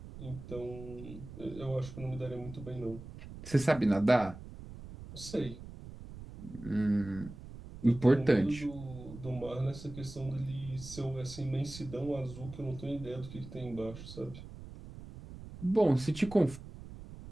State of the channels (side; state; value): right; noise; rumble, 14 dB below the sound